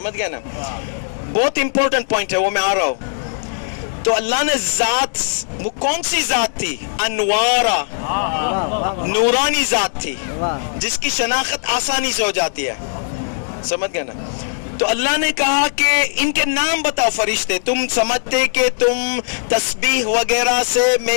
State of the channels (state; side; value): silent; right; digital silence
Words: گئے نا, بہت امپورٹنٹ پوائنٹ ہے, وہ میں آ رہا ہوں. تو اللہ نے ذات, وہ کون سی ذات تھی؟ انوارا, نورانی ذات تھی, جس کی شناخت آسانی سے ہو جاتی ہے, سمجھ گئے نا. تو اللہ نے کہا کہ ان کے نام بتاؤ فرشتے, تم سمجھتے کہ تم تسبیح وغیرہ سے